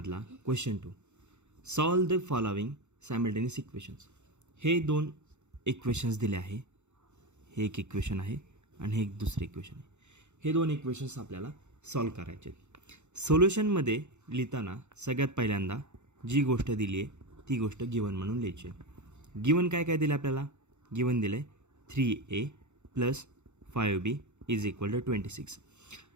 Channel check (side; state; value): left; late; 0.83 ms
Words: question 2. Solve the following simultaneous equations. हे दोन इक्वेशन्स दिले आहे. हे एक इक्वेशन आहे आणि हे एक दुसरे इक्वेशन आहे. हे दोन इक्वेशन्स आपल्याला सॉल्व करायचे आहेत. सोल्युशनमध्ये लिहिताना सगळ्यात पहिल्यांदा जी गोष्ट दिली आहे ती गोष्ट गिवन म्हणून लिहायची आहे. गिवन काय काय दिलं आपल्याला? गिवन दिलं आहे 3a + 5b = 26.